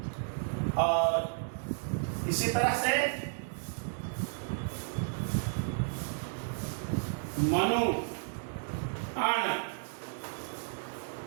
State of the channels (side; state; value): left; silent; digital silence